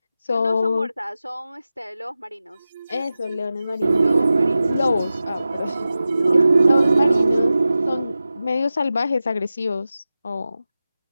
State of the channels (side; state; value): both; inverted; correlation -0.93